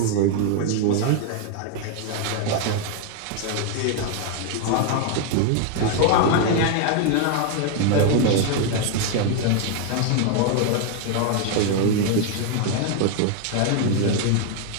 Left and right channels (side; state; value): both; different; correlation 0.01